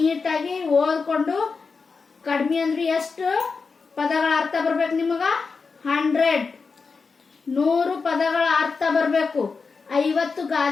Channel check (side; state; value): right; quieter; 4.8 dB